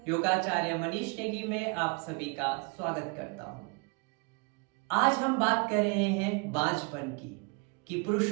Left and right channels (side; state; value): left; quieter; 31.6 dB